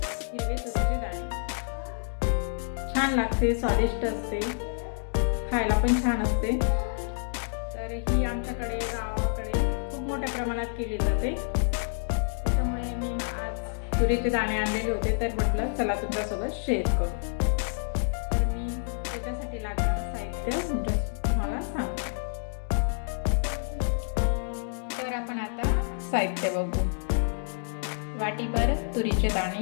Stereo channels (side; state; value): right; silent; digital silence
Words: तुरीचे दाणे छान लागते, स्वादिष्ट असते, खायला पण छान असते। तर ही आमच्याकडे गावाकडे खूप मोठ्या प्रमाणात केली जाते, त्यामुळे मी आज तुरीचे दाणे आणलेले होते, तर म्हटलं चला तुमच्यासोबत शेअर करू। तर मी त्याच्यासाठी लागणारं तुम्हाला सांगते। तर आपण आता साहित्य बघू। वाटीभर तुरीचे